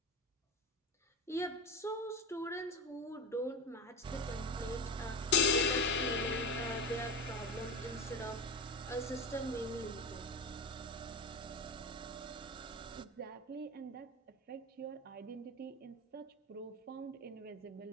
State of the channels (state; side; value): normal; both; correlation 0.23